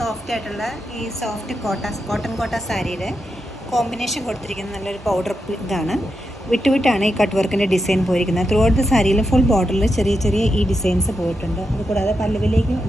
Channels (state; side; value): normal; both; correlation 0.86